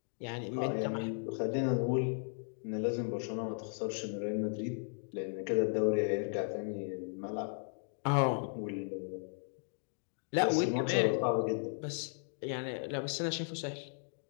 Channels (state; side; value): silent; right; digital silence